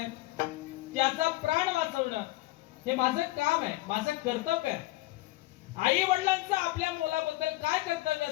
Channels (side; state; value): right; quieter; 18.8 dB